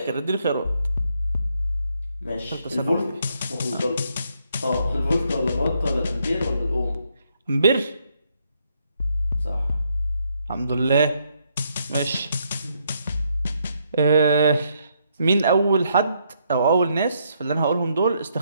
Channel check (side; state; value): both; inverted; correlation -0.74